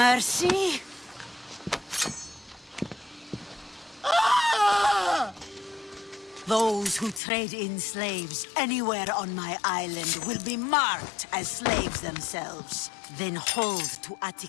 Ah! Those who trade in slaves anywhere on my island will be marked as slaves themselves, then hauled to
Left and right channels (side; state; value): right; drops out; at 7.2 s